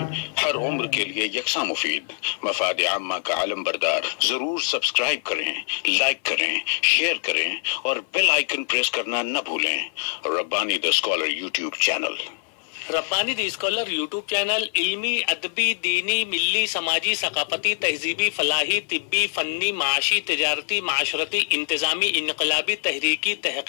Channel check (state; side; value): silent; right; 57 dB below the other